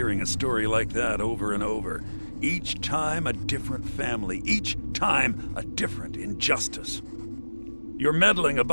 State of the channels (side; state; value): both; inverted; correlation -1.00